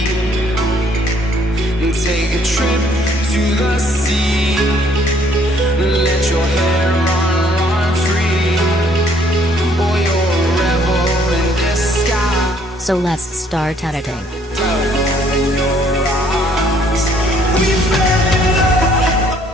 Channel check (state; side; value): normal; both; correlation 0.63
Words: And take a trip to the sea, let your hair run free, or you're a rebel in disguise. So let's start editing.